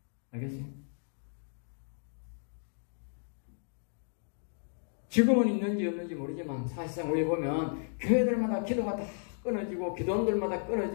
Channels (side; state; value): right; silent; digital silence